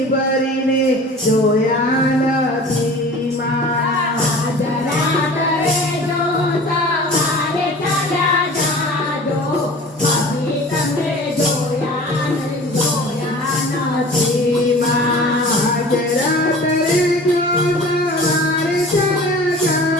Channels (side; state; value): both; normal; correlation 0.42